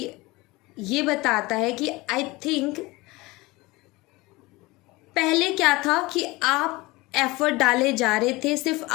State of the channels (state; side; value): quieter; right; 22.0 dB